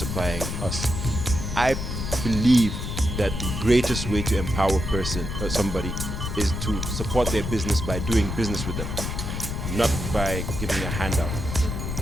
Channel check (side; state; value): left; noise; rumble, 4 dB below the sound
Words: us. I believe that the greatest way to empower somebody is to support their business by doing business with them, not by giving a handout.